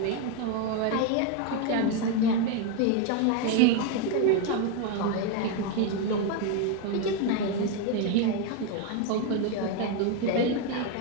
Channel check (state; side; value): different; both; correlation 0.02